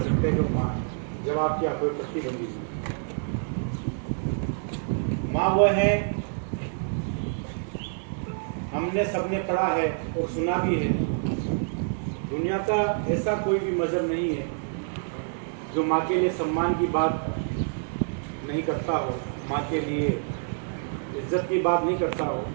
हैं कि माँ है, जब आपकी आँखों पे पट्टी बंधी हुई। माँ वो है, हमने सबने पढ़ा है और सुना भी है, दुनिया का ऐसा कोई भी मजहब नहीं है जो माँ के लिए सम्मान की बात नहीं करता हो, माँ के लिए इज्जत की बात नहीं करता हो।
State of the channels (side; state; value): left; silent; 59 dB below the other